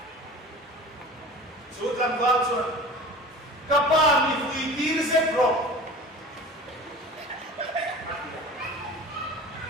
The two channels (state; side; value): normal; both; correlation 0.39